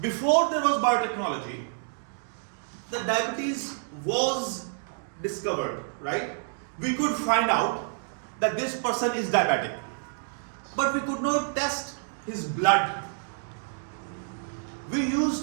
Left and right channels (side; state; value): left; silent; digital silence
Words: before there was biotechnology, the diabetes was discovered, right? We could find out that this person is diabetic, but we could not test his blood. We